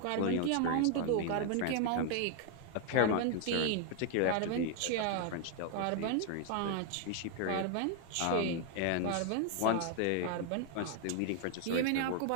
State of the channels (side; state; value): both; different; correlation 0.00